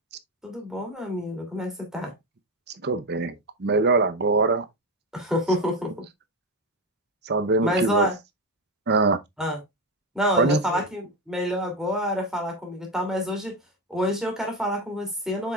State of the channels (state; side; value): normal; both; correlation 0.12